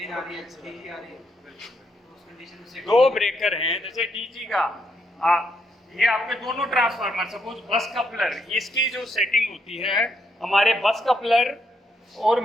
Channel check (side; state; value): both; normal; correlation 0.77